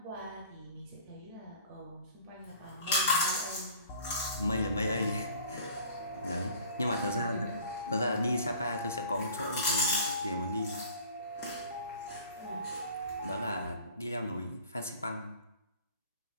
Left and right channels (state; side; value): inverted; both; correlation -0.47